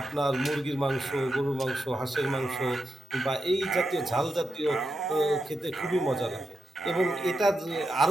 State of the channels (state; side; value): normal; both; correlation 0.86